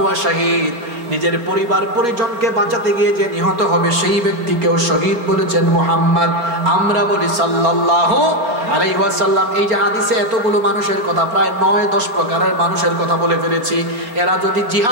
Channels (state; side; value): late; left; 4.2 ms